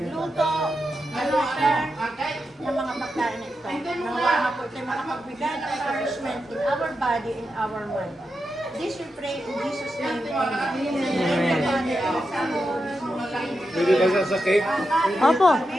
nag-prepare ng mga pagkain na ito. Nawa nga po ito makapagbigay ng nourishment in our body, in our mind. This we pray in Jesus' name. Amen. Pwede ba sa cake? Opo.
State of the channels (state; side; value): normal; both; correlation 0.88